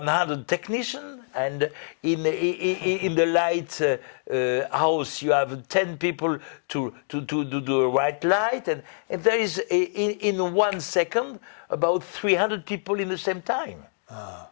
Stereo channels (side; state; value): right; silent; digital silence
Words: technicians, and in the light house you have 10 people to do the right light, and there is in 1 second about 300 people in the same time.